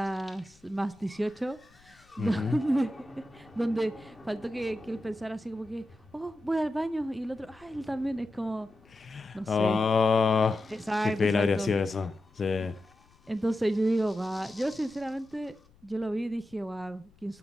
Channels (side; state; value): left; noise; rumble, 29 dB below the sound